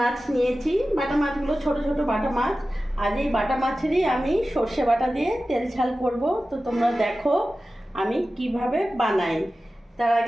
নিয়েছি। বাটা মাছগুলো ছোট ছোট বাটা মাছ। আজ এই বাটা মাছেরই আমি সর্ষে বাটা দিয়ে তেল ঝাল করব। তো তোমরা দেখো আমি কিভাবে বানাই। তার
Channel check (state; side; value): normal; both; correlation 0.95